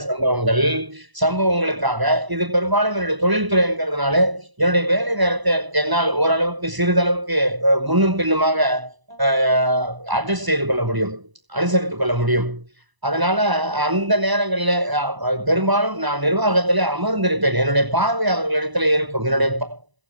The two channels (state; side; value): late; left; 1.0 ms